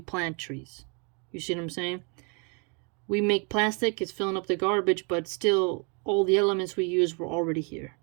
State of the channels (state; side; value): quieter; left; 34.9 dB